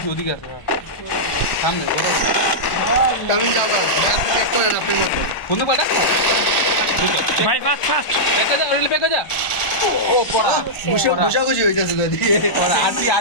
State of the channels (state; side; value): late; right; 1.4 ms